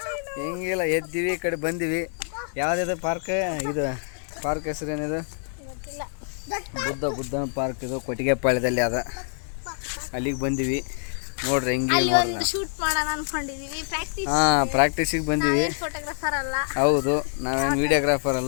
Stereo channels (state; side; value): silent; right; 61 dB below the other